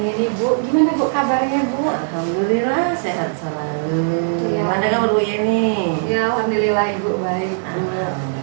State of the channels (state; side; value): silent; left; 66 dB below the other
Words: ini Bu. Gimana Bu kabarnya Bu? Alhamdulillah sehat selalu. Iya. Mana kabar Bu Yeni? Ya Alhamdulillah Ibu baik Bu.